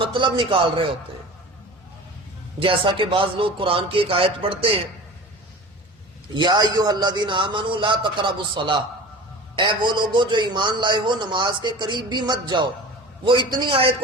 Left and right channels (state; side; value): normal; both; correlation 0.37